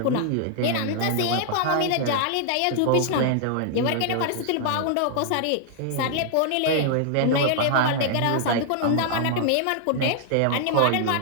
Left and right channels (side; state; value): both; different; correlation 0.00